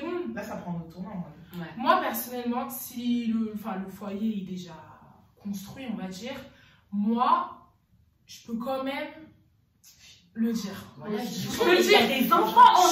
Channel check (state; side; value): identical; both; correlation 1.00